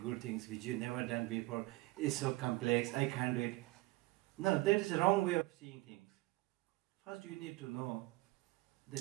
things which you never done before. It's so complex, I can't do it. No, that is the wrong way of seeing things. First you need to know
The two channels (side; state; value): left; quieter; 20.7 dB